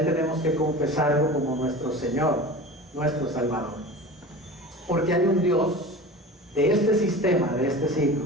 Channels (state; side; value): normal; both; correlation 0.35